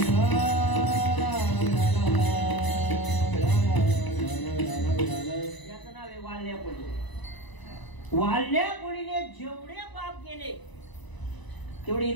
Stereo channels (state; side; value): late; right; 1.0 ms